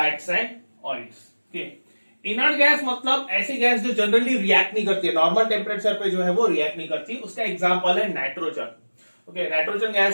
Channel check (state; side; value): inverted; both; correlation -1.00